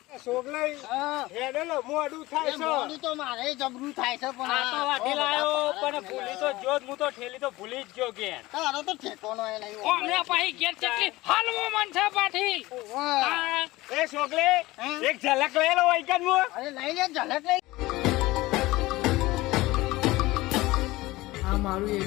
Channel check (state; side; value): quieter; right; 19.3 dB